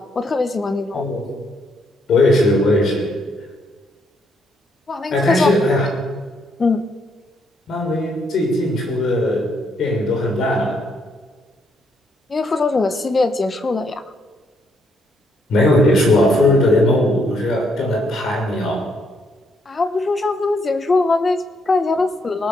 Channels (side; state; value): both; normal; correlation 0.74